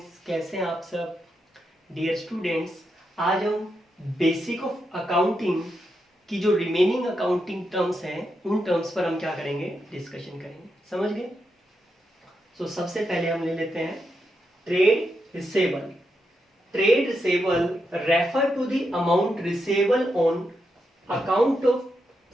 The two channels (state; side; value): normal; both; correlation 0.84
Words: कैसे हैं आप सब। डियर स्टूडेंट्स, आज हम बेसिक ऑफ अकाउंटिंग की जो रिमेनिंग अकाउंटिंग टर्म्स हैं उन टर्म्स पर हम क्या करेंगे, डिस्कशन करेंगे। समझ गए। सो सबसे पहले हम ले लेते हैं trade receivable. Trade receivable refer to the amount receivable on account of